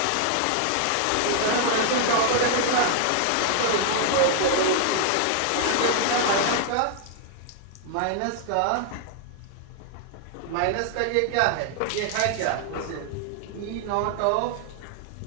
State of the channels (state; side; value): different; both; correlation 0.00